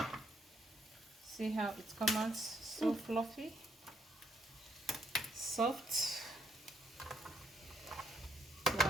how it comes out, so fluffy, soft.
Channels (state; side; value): normal; both; correlation 0.73